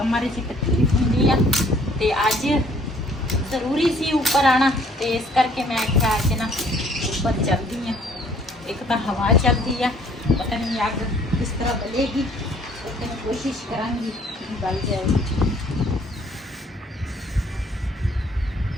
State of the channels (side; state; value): both; normal; correlation 0.59